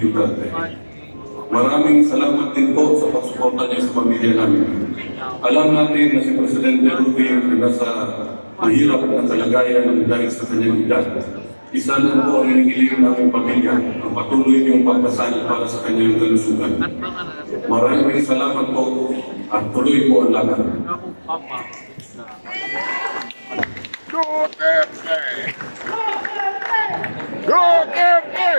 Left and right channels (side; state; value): both; inverted; correlation -1.00